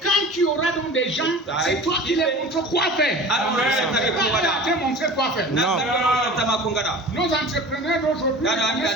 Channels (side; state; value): both; normal; correlation 0.38